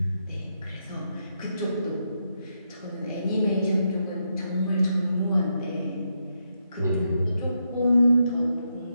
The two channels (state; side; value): inverted; both; correlation -0.82